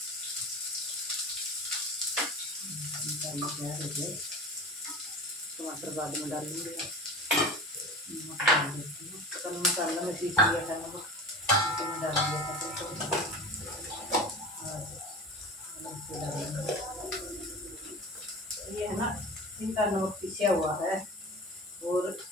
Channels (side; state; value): both; normal; correlation 0.34